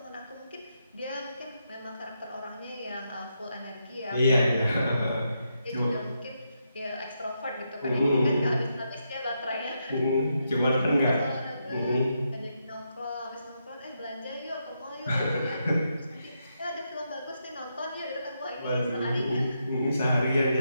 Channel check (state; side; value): inverted; both; correlation -0.82